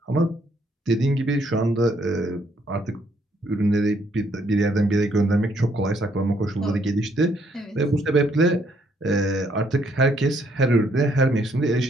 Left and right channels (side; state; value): both; normal; correlation 0.69